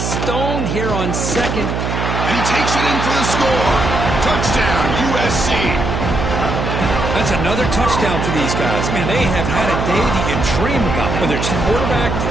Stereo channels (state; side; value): noise; right; hum, 2 dB below the sound